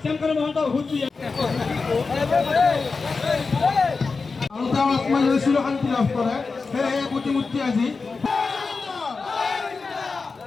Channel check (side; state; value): right; quieter; 4.4 dB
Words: শ্যামকানু মহন্ত হুঁশিয়াৰ আৰু তেওঁ আত্মজয় চিৰশান্তি লাভ কৰে সেয়েহে প্ৰতিমূৰ্তি আজি